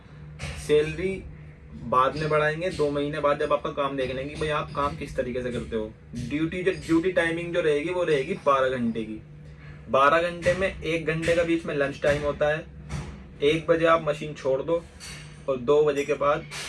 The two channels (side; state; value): both; identical; correlation 1.00